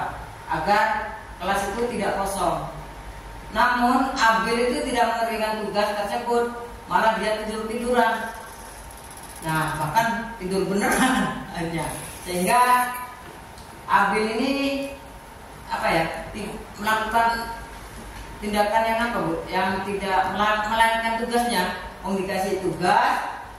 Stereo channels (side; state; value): both; identical; correlation 1.00